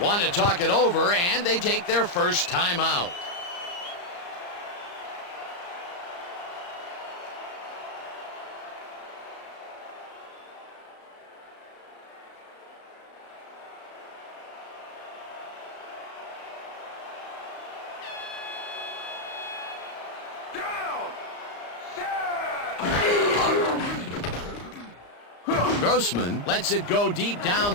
want to talk it over, and they take their first timeout. Grossman lets it go deep down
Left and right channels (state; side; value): late; right; 34 ms